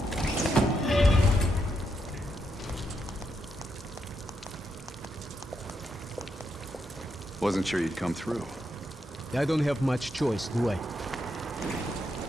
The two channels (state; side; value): normal; both; correlation 0.81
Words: Wasn't sure you'd come through. I don't have much choice, do I?